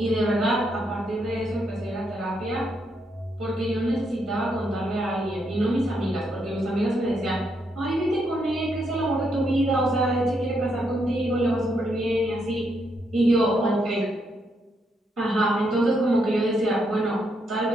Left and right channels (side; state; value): both; normal; correlation 0.77